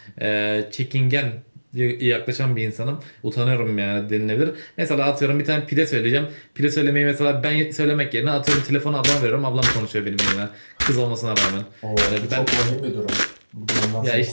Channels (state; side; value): inverted; both; correlation -1.00